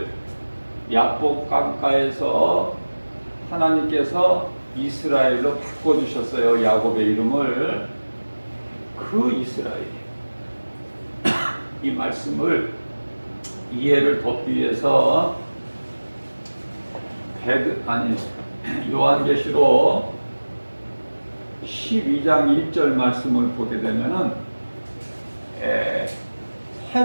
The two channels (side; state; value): both; inverted; correlation -1.00